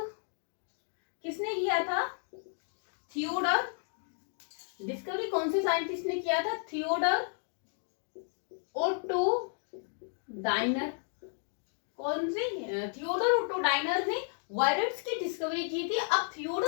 किसने किया था, थियोडर. डिस्कवरी कौन से साइंटिस्ट ने किया था, थियोडर ओटो डायनर. कौन से, थियोडर ओटो डायनर ने वायरस की डिस्कवरी की थी. अब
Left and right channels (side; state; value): right; silent; 56 dB below the other